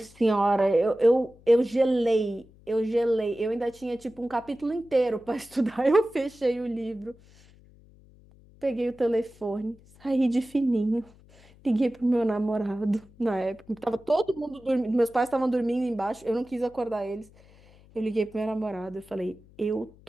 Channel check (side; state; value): left; noise; hum, 26 dB below the sound